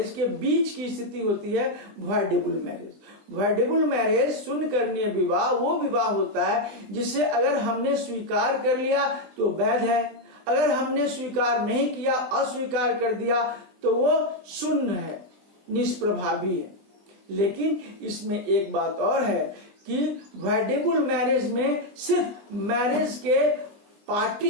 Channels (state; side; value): late; left; 20 ms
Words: के बीच की स्थिति होती है वाइडेबल मैरिज। वाइडेबल मैरिज शून्य करणीय विवाह वो विवाह होता है जिसे अगर हमने स्वीकार कर लिया तो वैध है, अगर हमने स्वीकार नहीं किया, अस्वीकार कर दिया, तो वो शून्य है, निष्प्रभावी है। लेकिन इसमें एक बात और है कि वाइडेबल मैरिज में सिर्फ मैरिज के पार्टी